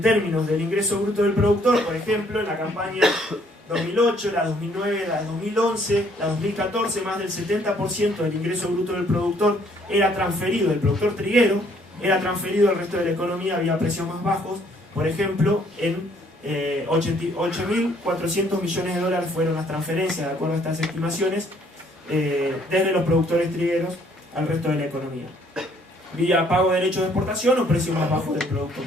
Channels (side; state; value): both; normal; correlation 0.64